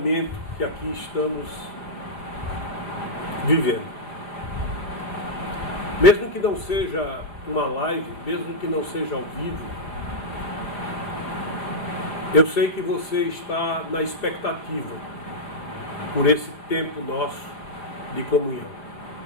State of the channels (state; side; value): late; right; 4.9 ms